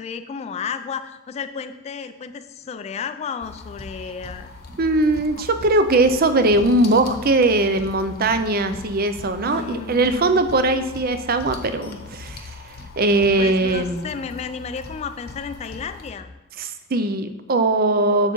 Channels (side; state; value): both; normal; correlation 0.13